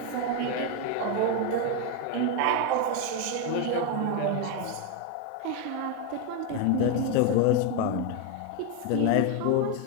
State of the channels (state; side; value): different; both; correlation 0.02